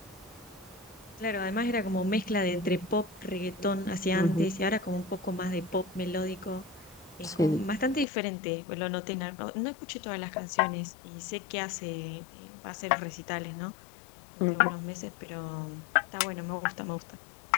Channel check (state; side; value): drops out; right; at 8.1 s